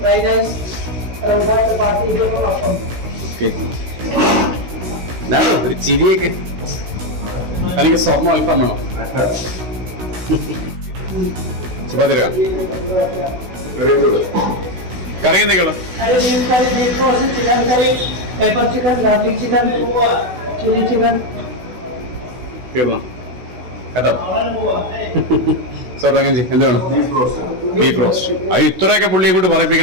റൈസ്, ചപ്പാത്തി, എന്താണോ ഒരു ചിരിയൊക്കെ? തനിക്ക് സ്വർണ്ണം അല്പം വേണോ? ചപ്പാത്തി കറി എന്തൊക്കെയുള്ള? Beef roast, chicken curry, pepper chicken, garlic chicken, chilli chicken. തീർന്നോ? കേട്ടോ സാർ അങ്ങനെ എന്ത് വേണം? Beef roast. അത് ഇത്രയൊക്കെ പുള്ളിയെ കൊണ്ട്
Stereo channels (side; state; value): left; late; 16 ms